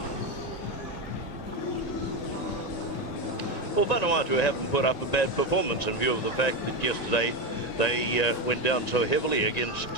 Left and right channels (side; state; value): right; late; 1.9 ms